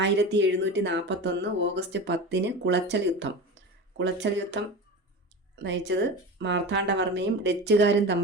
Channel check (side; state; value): both; normal; correlation 0.29